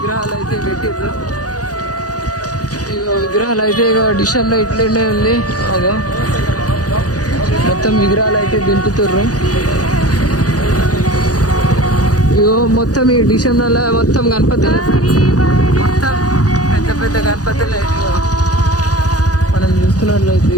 అయితే పెట్టిర్రు. ఇగో విగ్రహాలు అయితే ఇక డిషన్లో ఇట్లనే ఉంది. అదో మొత్తం విగ్రహాలు అయితే దింపుతుర్రు. ఇగో మొత్తం ఈ డిషన్ల మొత్తం గణపతులు, మొత్తం పెద్ద పెద్ద గణపతులు అయితే మనం చూస్తున్నట్లయితే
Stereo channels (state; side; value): late; right; 0.67 ms